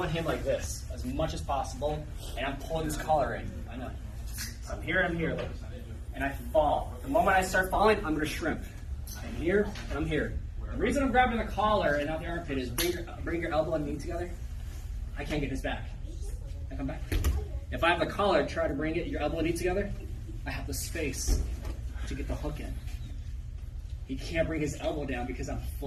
him like this as much as possible. And I'm pulling this collar in. I know. So I'm here and I'm here. And I fall. The moment I start falling, I'm going to shrimp. I'm here and I'm here. The reason I'm grabbing the collar and not the armpit is bring your elbow and knee together. I can't get his back. I come back. If I have the collar, try to bring your elbow and knee together. I have the space to get the hook in. He can't bring his elbow down because I'm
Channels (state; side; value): identical; both; correlation 1.00